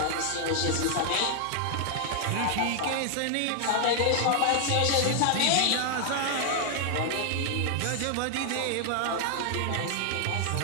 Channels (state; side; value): different; both; correlation 0.00